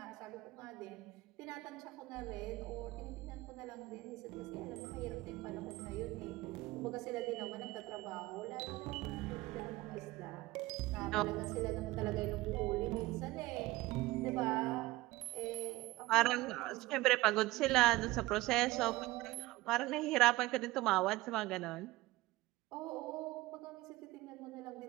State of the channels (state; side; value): quieter; left; 19.3 dB